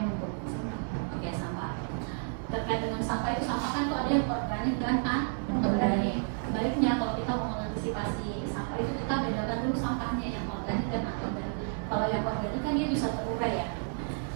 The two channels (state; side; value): silent; left; 57 dB below the other